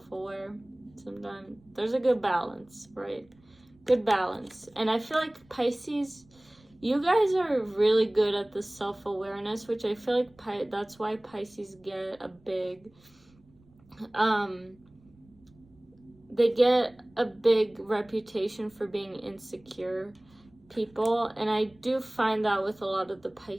sometimes. There's a good balance, right? Good balance. And I feel like Pisces, you guys are really good at the self-awareness, which I feel like that's why Pisces get a big they get a big reputation for being insecure people, and I do find that with a lot of the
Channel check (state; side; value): noise; right; rumble, 30 dB below the sound